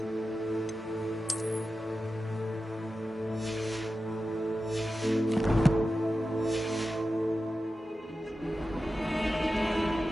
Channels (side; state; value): both; normal; correlation 0.93